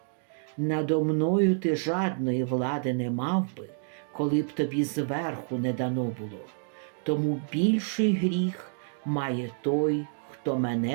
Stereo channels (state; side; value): silent; left; 59 dB below the other